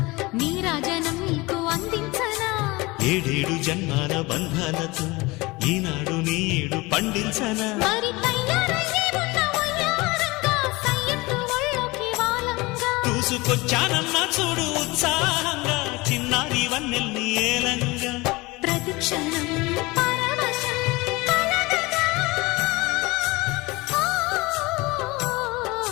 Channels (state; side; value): quieter; right; 22.9 dB